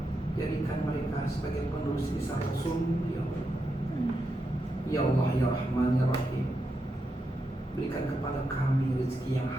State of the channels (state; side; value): normal; both; correlation 0.85